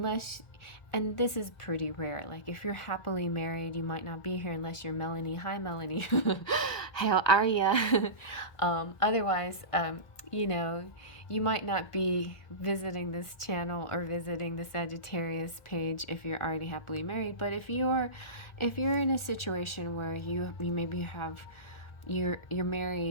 and this is pretty rare, like if you're happily married, you might not be here unless you're Melanie. Hi, Melanie. How are ya? Otherwise, you know, you might not be visiting this channel or visiting the Sagittarius page if you're already happily married. But if you're in a situation where you maybe have, you're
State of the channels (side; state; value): right; late; 1.6 ms